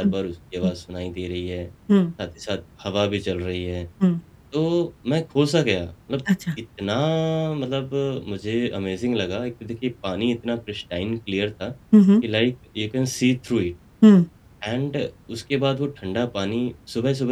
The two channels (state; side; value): identical; both; correlation 1.00